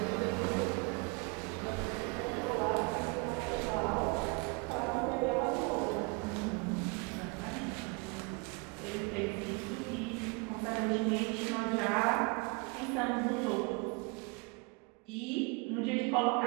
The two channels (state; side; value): quieter; left; 31.5 dB